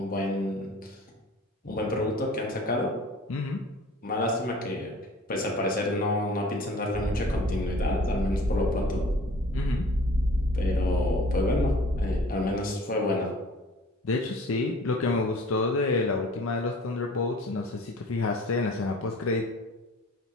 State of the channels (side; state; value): both; normal; correlation 0.48